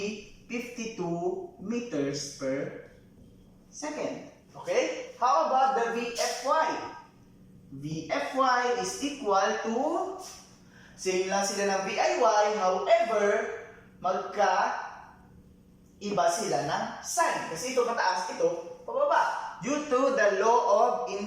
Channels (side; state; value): both; identical; correlation 1.00